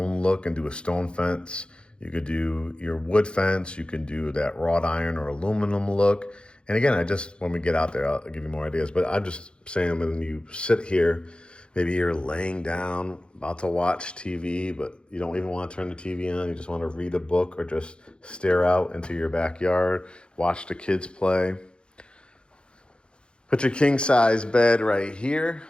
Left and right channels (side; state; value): right; late; 0.054 ms